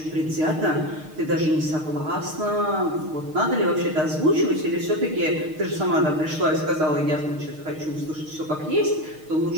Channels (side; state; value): left; late; 6.5 ms